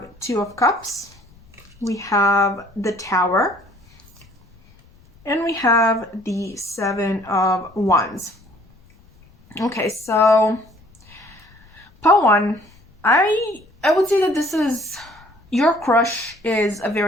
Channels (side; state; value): left; noise; rumble, 28 dB below the sound